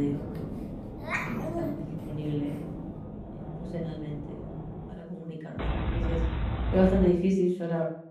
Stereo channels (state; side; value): identical; both; correlation 1.00